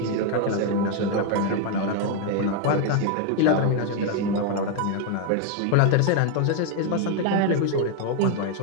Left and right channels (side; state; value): both; different; correlation 0.01